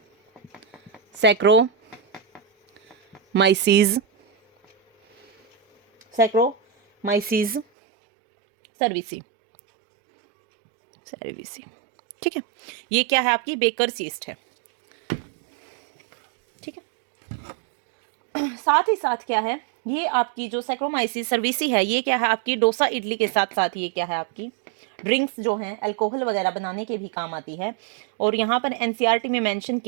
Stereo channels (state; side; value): drops out; left; at 7.7 s